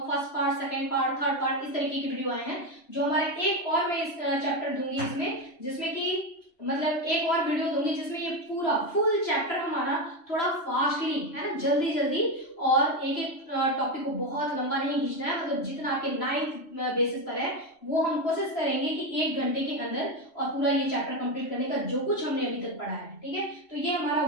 first part, second part, third part, इस तरीके की वीडियो आए हैं। जो हमारे एक और मैं इस चैप्टर दूंगी इसमें, जिसमें कि मतलब एक और वीडियो दूंगी जिसमें ये पूरा फुल चैप्टर हमारा थोड़ा फास्टली, है ना, जल्दी जल्दी, और एक एक टॉपिक को बहुत लंबा नहीं खींचना है, मतलब जितना आपके 9th बेसिस पर है वो हम कोशिश करेंगे कि 1 घंटे के अंदर और पूरा ये चैप्टर कंप्लीट करने का, जो कुछ हमने अभी तक पढ़ा है, ठीक है। तो ये हमारा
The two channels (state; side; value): late; right; 3.1 ms